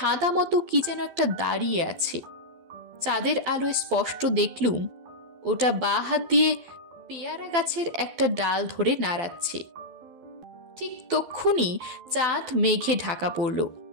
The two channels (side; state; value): left; late; 12 ms